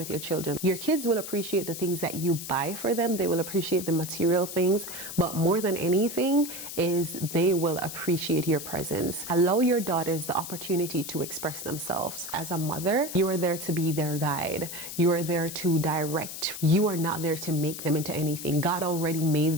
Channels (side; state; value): left; noise; hiss, 9 dB below the sound